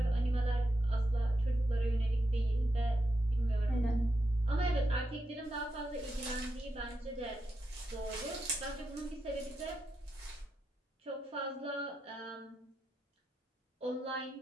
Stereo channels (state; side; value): normal; both; correlation 0.86